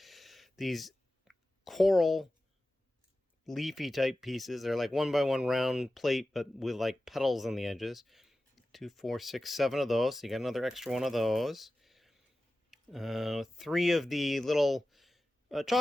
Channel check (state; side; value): normal; both; correlation 0.94